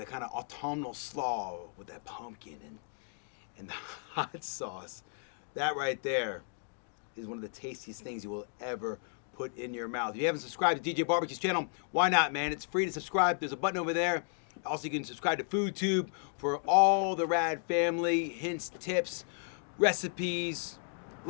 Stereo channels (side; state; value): right; silent; 55 dB below the other